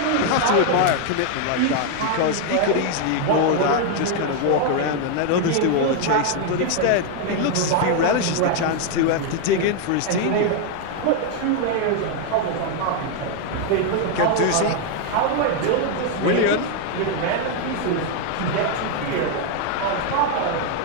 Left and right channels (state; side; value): different; both; correlation 0.01